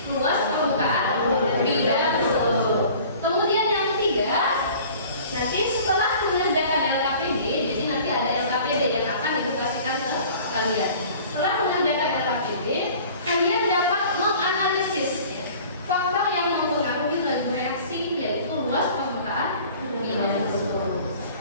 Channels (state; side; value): inverted; both; correlation -0.47